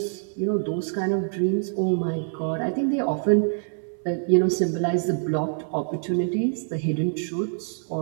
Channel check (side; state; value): left; silent; 62 dB below the other